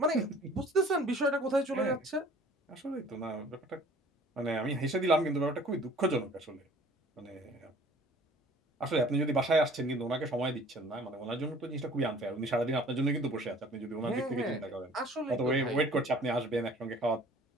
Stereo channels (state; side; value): normal; both; correlation 0.51